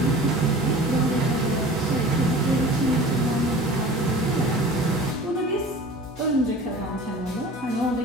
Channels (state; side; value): normal; both; correlation 0.41